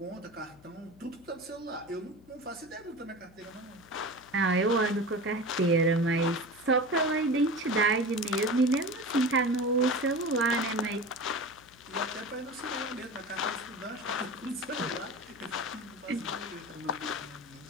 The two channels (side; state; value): left; noise; hum, 25 dB below the sound